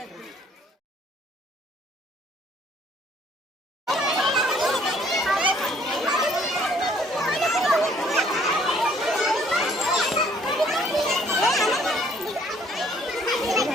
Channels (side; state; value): both; normal; correlation 0.61